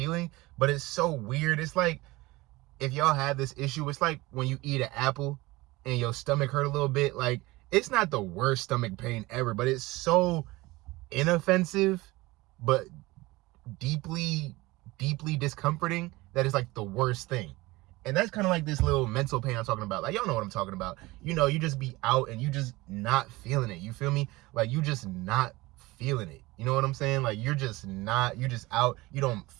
but it's so weird. It's like if y'all have this issue, it's like when you eat an apple and your stomach hurt a little bit. Like, it's not the worst stomach pain ever, but it's so inoffensive, but deeply discomforting that it's like the worst thing. And that's kind of like this little mental pain I'm talking about. Like, y'all know what I'm talking about. You know, you just be out and you just not feeling it. You feel me? Like, you just not feeling it. You know what I'm saying? Like, you're just out. You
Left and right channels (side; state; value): left; quieter; 20.8 dB